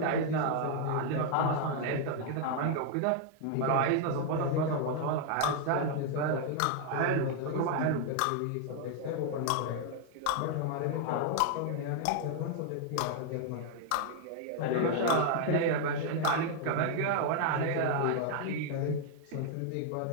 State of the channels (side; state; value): both; different; correlation 0.00